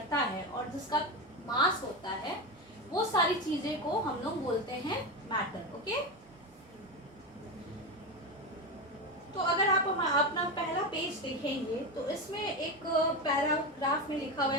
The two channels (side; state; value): both; normal; correlation 0.17